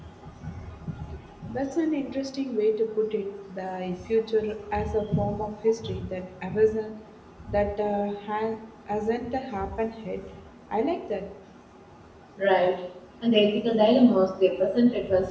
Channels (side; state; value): both; identical; correlation 1.00